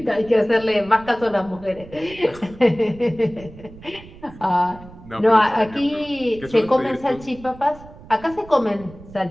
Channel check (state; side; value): noise; right; rumble, 19 dB below the sound